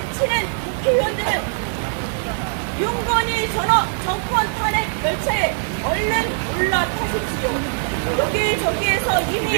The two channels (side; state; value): left; silent; digital silence